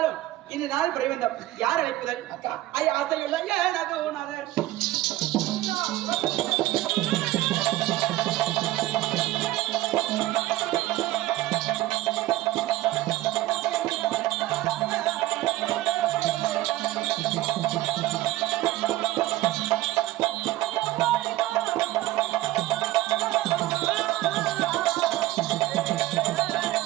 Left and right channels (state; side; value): quieter; left; 16.4 dB